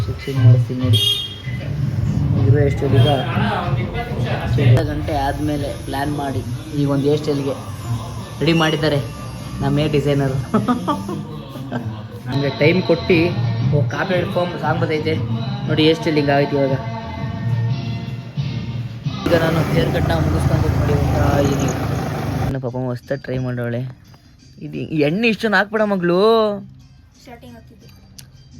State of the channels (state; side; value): identical; both; correlation 1.00